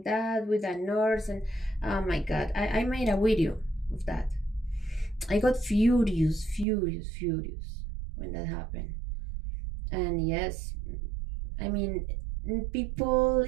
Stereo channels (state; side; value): drops out; left; at 6.7 s